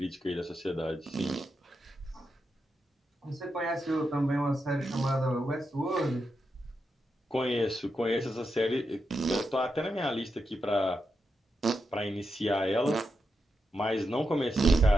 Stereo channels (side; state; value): both; normal; correlation 0.86